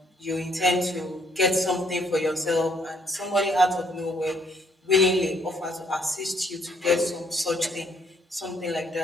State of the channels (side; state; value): both; normal; correlation 0.67